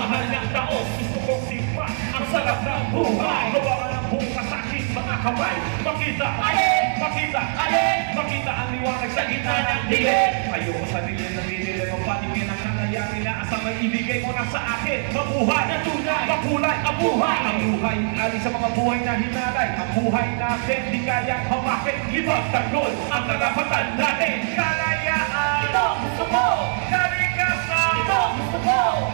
ng taos. Gusto kong tikman ang sarap ng buhay. Gawa ng bukas sa aking mga kamay. Makita, makita ang liwanag sa gitna ng dilim. Ayoko sa dilim na dinilim ang patingin ng kanayanin na asang may ibigay mo na sa akin. Mabuhay na tunay, makulay ang buhay. Ang buhay, alis sa mga buhay na hinalay. Ang buhay natin, di kayang hawakin. Libag tanggol ang karapatan natin. Kalayaan, Ito gusto ko! kalikasan, Ito gusto ko!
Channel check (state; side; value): silent; left; digital silence